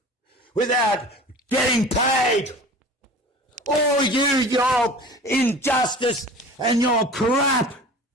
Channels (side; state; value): both; normal; correlation 0.40